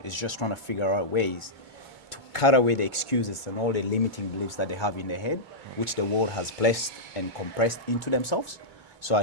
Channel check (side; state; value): left; late; 2.2 ms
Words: it's just trying to figure out ways to cut away the excuses and all the limiting beliefs that they have in their head, which the world has placed and compressed into themselves. So I